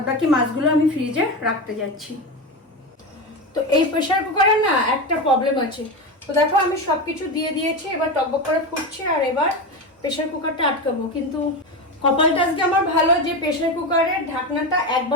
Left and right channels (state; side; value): normal; both; correlation 0.19